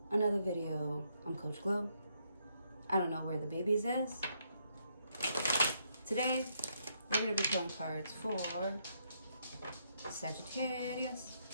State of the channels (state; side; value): inverted; both; correlation -0.75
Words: another video. I'm Coach Glow. I don't know where the babies is. Today, we're going to be pulling cards for Sagittarius.